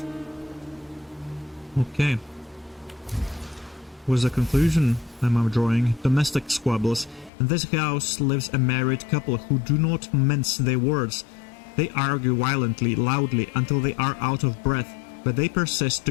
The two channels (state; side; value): drops out; right; at 7.3 s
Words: Okay. Was the conclusion I'm drawing. Domestic squabbles. In this house lives a married couple who do not mince their words. They argue violently, loudly, until they are out of breath, but they persist